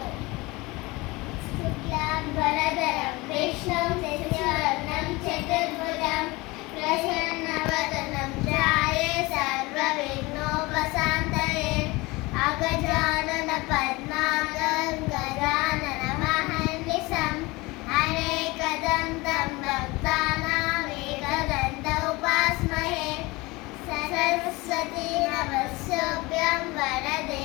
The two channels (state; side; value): quieter; right; 22.9 dB